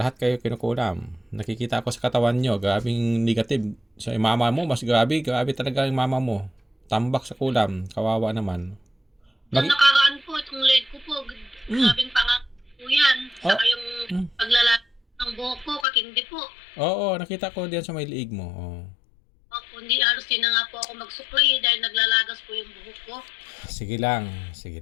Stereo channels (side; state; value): right; drops out; at 15.9 s